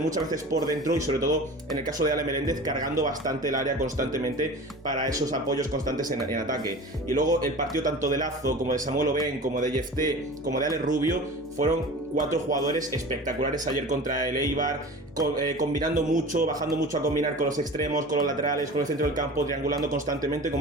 muchas veces por dentro, y sobre todo en el caso de Ale Meléndez, cargando bastante el área constantemente para esos apoyos constantes en ataque. Y luego el partido tanto de Lazo como de Samuel Oben, como de Jefté, como de Alex Rubio, fueron 4 jugadores espectaculares ayer contra el Eibar, combinando mucho, bajando mucho a combinar con los extremos, con los laterales, con el centro del campo, triangulando constantemente,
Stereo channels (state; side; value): normal; both; correlation 0.37